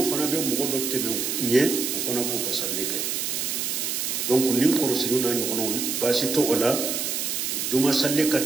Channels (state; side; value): noise; right; hiss, 1 dB below the sound